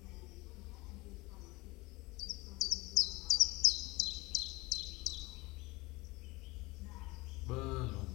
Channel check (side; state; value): right; quieter; 22.8 dB